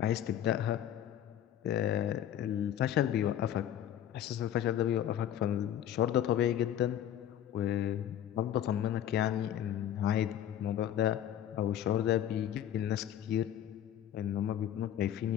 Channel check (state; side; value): quieter; right; 10.8 dB